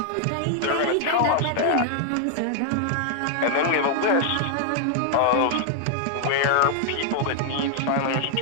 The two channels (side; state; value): both; different; correlation 0.00